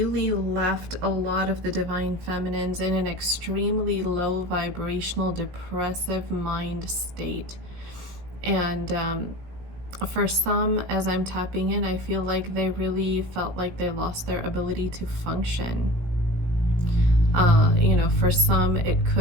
left a lot of the Divine Feminines in an extremely low vibrational, depressive mind state. And for some, as I'm tapping in, I feel like they really felt like they lost their ability to function. You know, for some, it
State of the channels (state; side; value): late; left; 17 ms